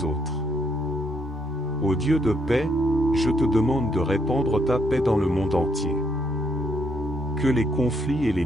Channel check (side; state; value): both; normal; correlation 0.74